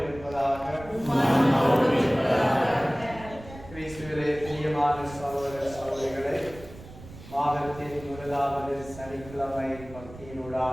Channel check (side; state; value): right; noise; rumble, 17 dB below the sound